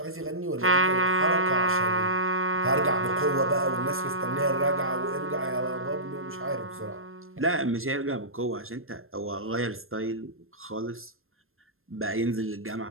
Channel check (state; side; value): late; left; 0.61 ms